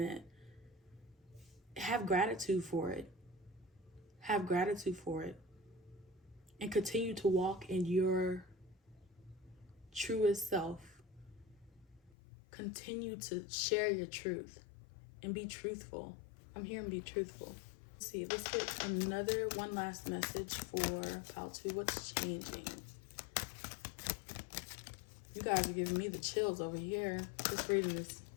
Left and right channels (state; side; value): drops out; right; at 12.1 s